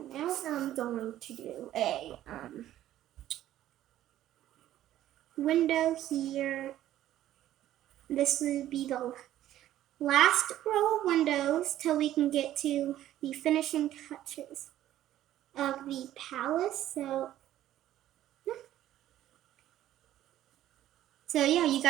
now I'm going to do a window here. This would be the last row of windows till we can get to the finishing touches of the palace. So yeah, you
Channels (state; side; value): quieter; left; 13.0 dB